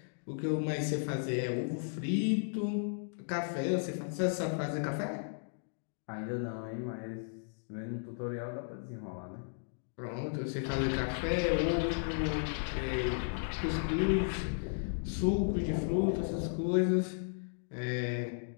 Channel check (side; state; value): right; silent; digital silence